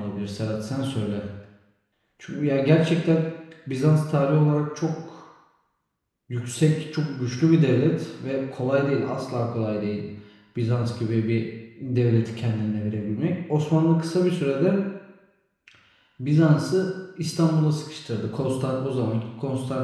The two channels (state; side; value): identical; both; correlation 1.00